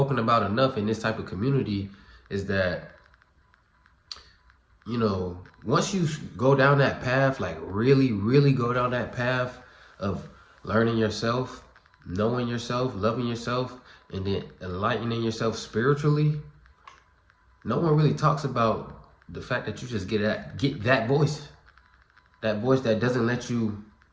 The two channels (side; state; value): both; identical; correlation 1.00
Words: about enough in this type of community is that, once you go down that path, like really, really go down that path of learning yourself, knowing yourself, loving yourself, and then enlightening yourself spiritually, no one really talks about the fact that you just get that voice that doesn't let you